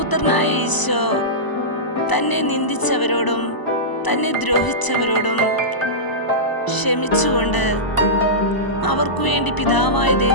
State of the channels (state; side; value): late; right; 1.0 ms